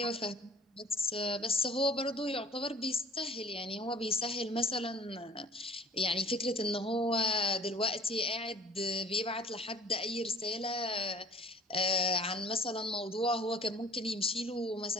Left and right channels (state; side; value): normal; both; correlation 0.49